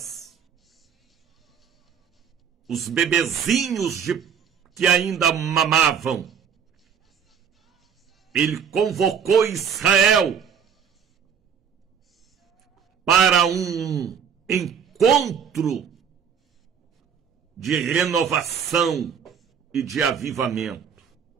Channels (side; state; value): left; quieter; 7.5 dB